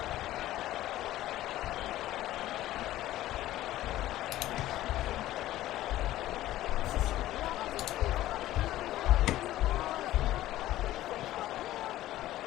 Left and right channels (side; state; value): right; quieter; 14.8 dB